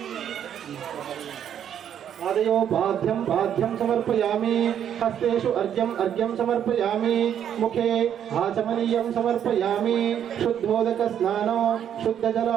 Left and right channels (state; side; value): quieter; left; 9.4 dB